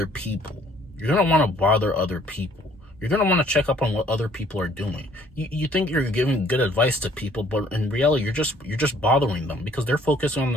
people. You're gonna want to check up on what other people are doing. You think you're giving good advice to people, but in reality, you're just bothering them, because they're focusing on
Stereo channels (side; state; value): both; normal; correlation 0.60